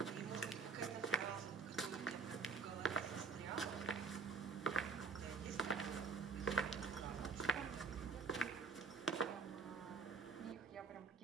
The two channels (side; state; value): left; quieter; 4.9 dB